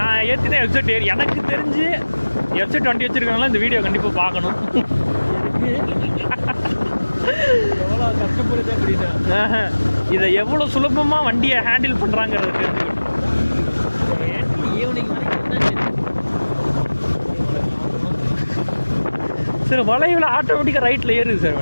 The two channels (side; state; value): both; inverted; correlation -1.00